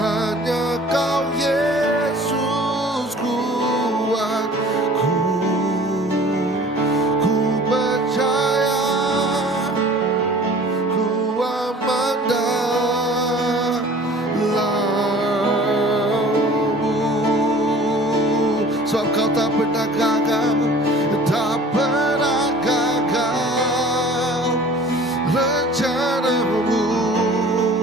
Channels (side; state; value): both; normal; correlation 0.47